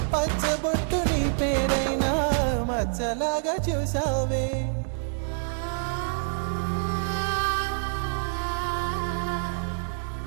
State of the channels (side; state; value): left; silent; digital silence